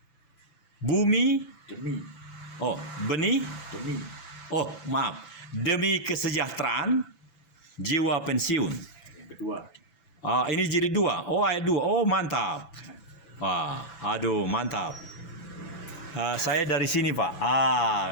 Bumi, benih, demi kesejahteraan, jiwa pensiun. Yang kedua. Ini jilid 2. Ayat 2. Mantap. Mantap. Saya dari sini Pak.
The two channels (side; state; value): right; late; 6.0 ms